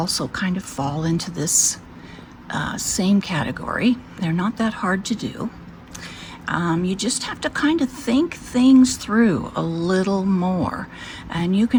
kind of fall into this same category. They're not that hard to do. You just have to kind of think things through a little more, and you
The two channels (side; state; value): both; identical; correlation 1.00